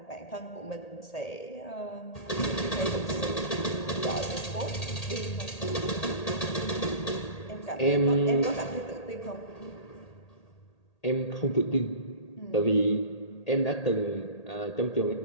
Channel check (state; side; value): late; right; 1.8 ms